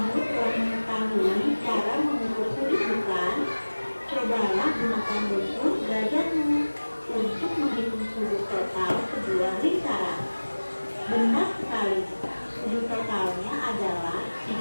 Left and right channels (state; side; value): inverted; both; correlation -1.00